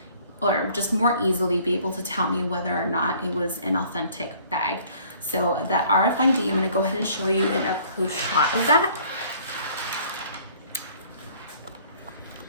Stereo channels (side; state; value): both; inverted; correlation -0.56